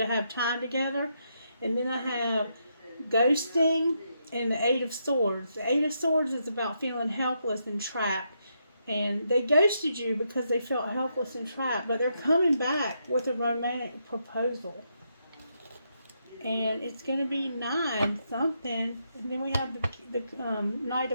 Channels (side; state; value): both; inverted; correlation -0.80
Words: have time together. And then I have ghosting and the Eight of Swords. The Eight of Swords is about feeling helpless and trapped. And they ghosted you because they felt helpless and trapped. But they're coming back with a romantic proposal. And it's going to be 9 something. And then we have the Knight